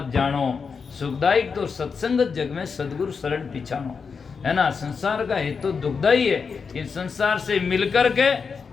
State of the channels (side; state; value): right; quieter; 5.5 dB